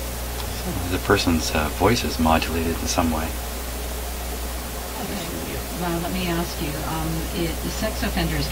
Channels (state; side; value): identical; both; correlation 1.00